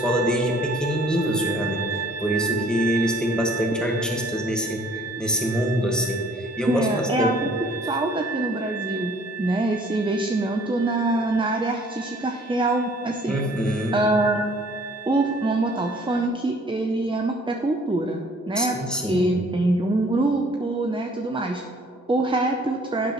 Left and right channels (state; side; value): normal; both; correlation 0.56